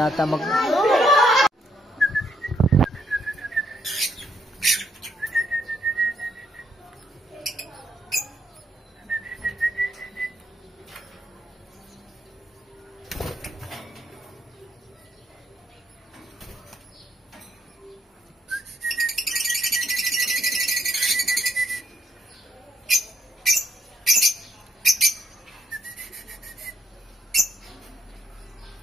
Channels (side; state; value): both; normal; correlation 0.73